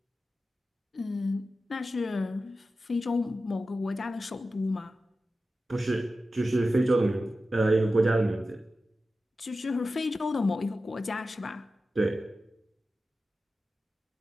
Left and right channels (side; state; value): both; normal; correlation 0.93